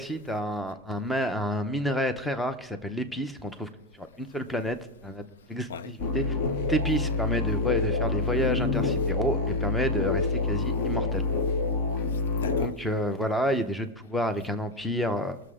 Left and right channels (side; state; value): both; normal; correlation 0.11